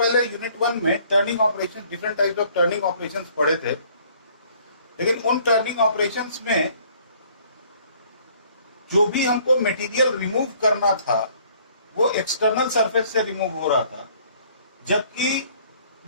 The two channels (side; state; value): both; inverted; correlation -0.59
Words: यूनिट 1 में turning operation, different types of turning operations पढ़े थे। लेकिन उन टर्निंग ऑपरेशंस में जो भी हमको मटेरियल रिमूव करना था वो एक्सटर्नल सरफेस से रिमूव हो रहा था, जबकि